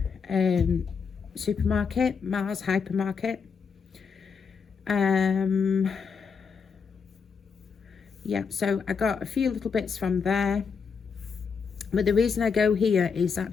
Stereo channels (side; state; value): right; quieter; 5.9 dB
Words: supermarket, Mars Hypermarket. Yeah, so I got a few little bits from there. But the reason I go here is